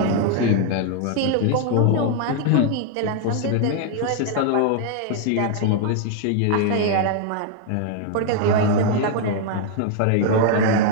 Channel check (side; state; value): both; different; correlation 0.00